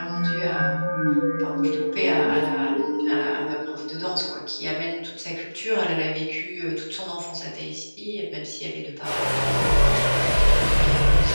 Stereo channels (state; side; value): inverted; both; correlation -1.00